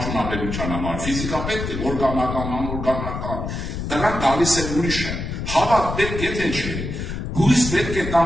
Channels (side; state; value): left; noise; rumble, 5 dB below the sound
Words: համար, ֆիզիկա պետք է, օրգանական, անօրգանական, դրանք գալիս է ուրիշը, հավատ պետք է թե չէ, հույս պետք է